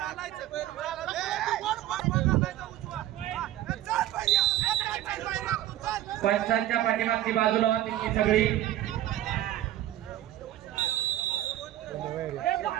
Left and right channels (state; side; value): quieter; left; 13.6 dB